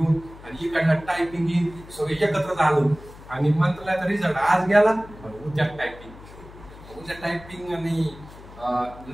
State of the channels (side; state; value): left; noise; hum, 18 dB below the sound